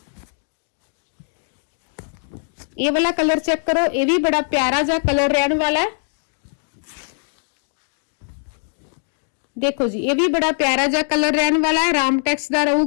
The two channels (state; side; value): silent; right; digital silence